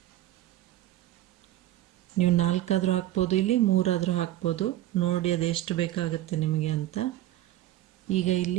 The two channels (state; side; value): quieter; left; 14.1 dB